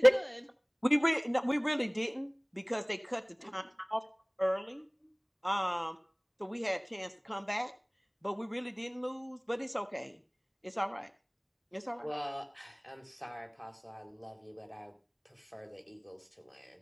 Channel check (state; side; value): identical; both; correlation 1.00